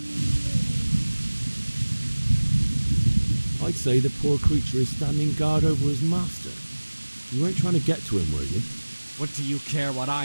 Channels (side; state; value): both; inverted; correlation -1.00